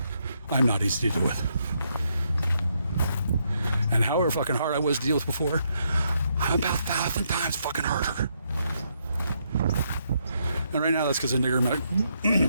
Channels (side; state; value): both; inverted; correlation -0.77